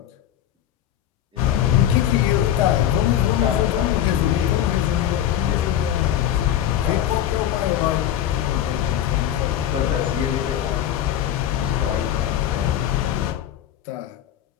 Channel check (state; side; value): quieter; right; 11.1 dB